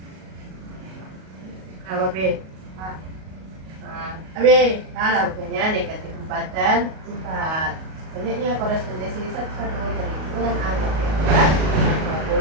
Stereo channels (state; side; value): late; left; 38 ms